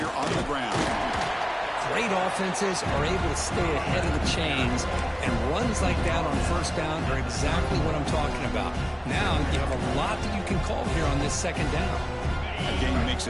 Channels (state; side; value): identical; both; correlation 1.00